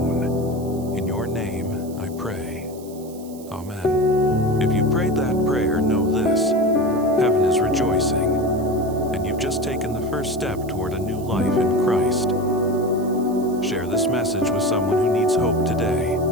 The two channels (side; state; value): right; noise; hiss, 21 dB below the sound